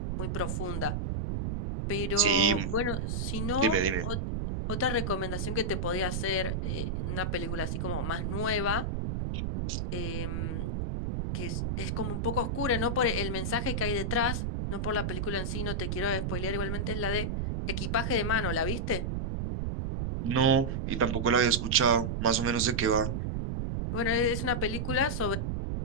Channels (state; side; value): noise; right; rumble, 1 dB below the sound